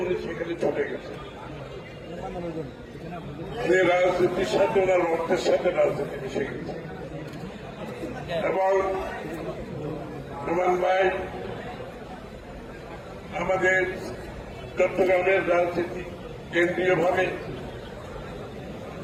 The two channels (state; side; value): identical; both; correlation 1.00